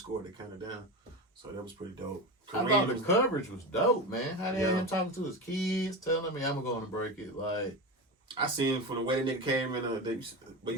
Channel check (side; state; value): both; normal; correlation 0.22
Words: they counted down. So that was pretty dope. I thought the coverage was dope, man. How they had Yeah. him talking to his kids, telling me I'm going to break it. Like, I seen from the way the nigga came in, but